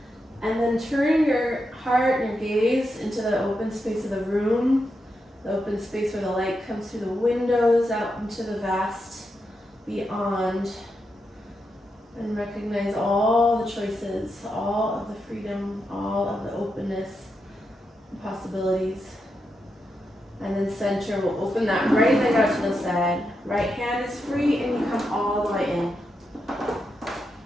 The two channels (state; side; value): normal; both; correlation 0.85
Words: And then turn your heart and your gaze into the open space of the room, the open space where the light comes through the windows out into the vast beyond, and recognize all the choices, all of the freedom, all of the openness and possibilities. And then center, we'll open that right leg out to the side. Right hand is free and you come all the way in.